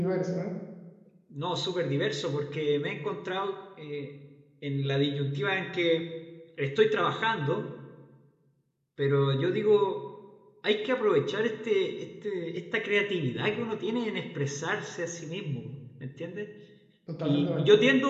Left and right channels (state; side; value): identical; both; correlation 1.00